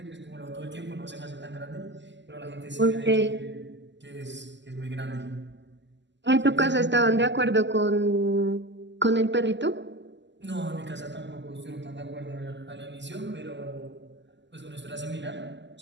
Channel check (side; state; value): left; late; 0.53 ms